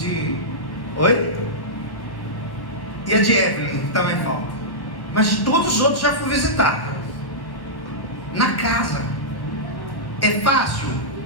Oi? E a de Evelyn, que também falta. Mas de todos os outros já fui visitar. Na casa. É fácil?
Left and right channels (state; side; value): late; right; 1.3 ms